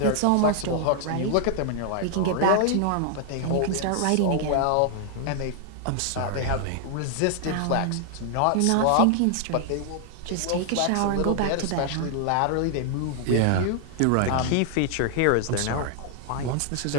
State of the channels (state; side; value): different; both; correlation 0.00